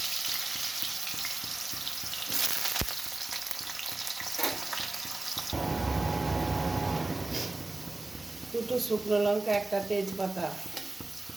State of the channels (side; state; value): left; quieter; 3.0 dB